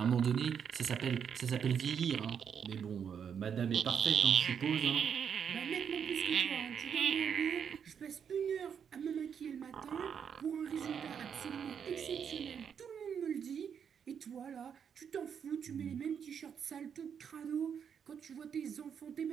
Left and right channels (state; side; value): quieter; left; 7.5 dB